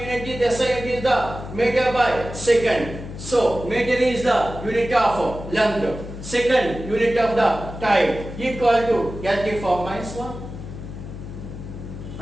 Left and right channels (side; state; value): left; noise; hum, 11 dB below the sound